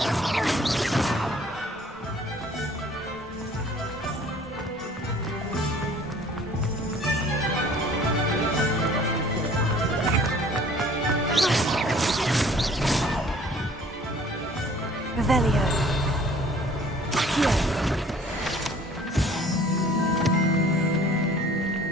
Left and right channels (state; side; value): normal; both; correlation 0.52